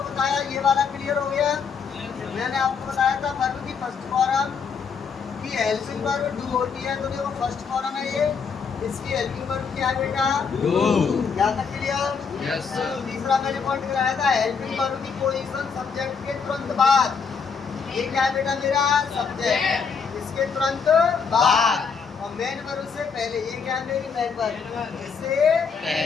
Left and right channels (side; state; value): right; quieter; 5.9 dB